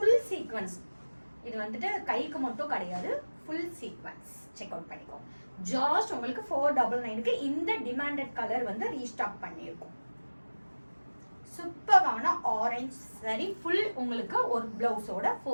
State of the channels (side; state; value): both; inverted; correlation -1.00